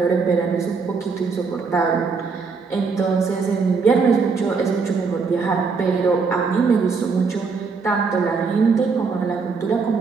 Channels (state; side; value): quieter; left; 4.9 dB